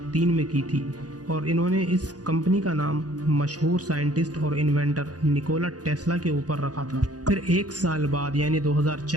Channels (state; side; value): late; left; 0.68 ms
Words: में की थी और इन्होंने इस कंपनी का नाम मशहूर साइंटिस्ट और इन्वेंटर निकोला टेस्ला के ऊपर रखा था। फिर एक साल बाद यानी